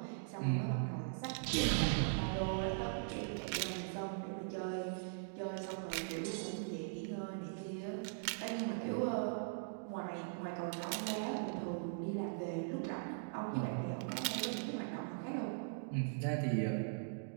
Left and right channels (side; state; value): left; silent; digital silence